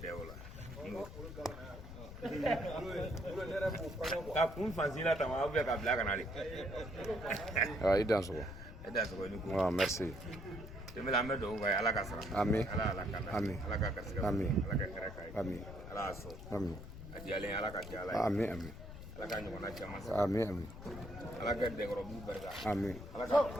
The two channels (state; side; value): noise; left; rumble, 12 dB below the sound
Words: dɛ o la ka kun fansila ta ma ka bila ka na de i dan sogo ni ko merci tɛmɛ an bɛ dugawu kɛ ala ka sara amin ala ka amin ala ka garisɛgɛ amin ala ka hɛrɛ k'a ye amin ala y'a sɔn amin a diyalen ala ka diya ala ye amin amin ala ka ɲɔgɔnna caman sɔrɔ amin amin ala ka dɛkɔrɔbugu barika amin ala ka